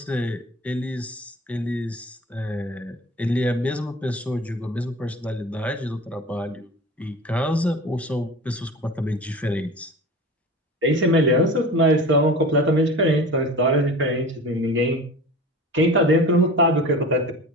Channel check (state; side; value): normal; both; correlation 0.36